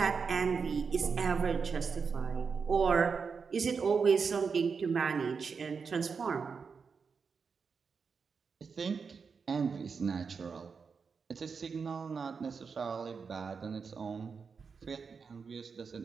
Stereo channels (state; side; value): quieter; left; 5.5 dB